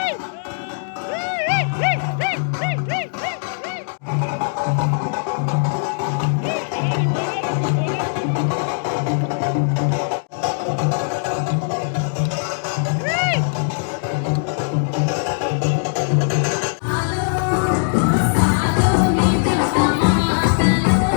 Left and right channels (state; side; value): silent; right; digital silence